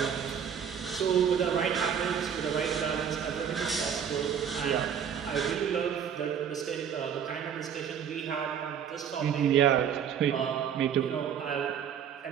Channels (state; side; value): quieter; left; 8.1 dB